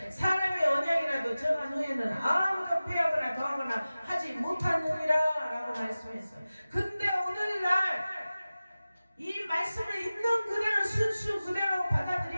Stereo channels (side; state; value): both; inverted; correlation -0.96